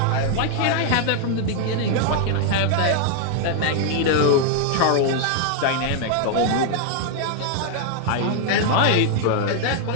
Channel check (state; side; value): different; both; correlation 0.00